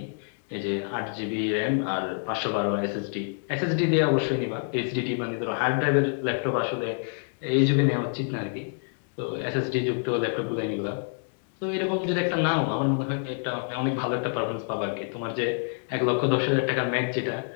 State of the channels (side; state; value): right; silent; 60 dB below the other